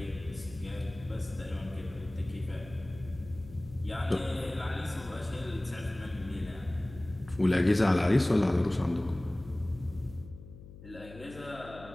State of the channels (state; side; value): noise; left; hum, 16 dB below the sound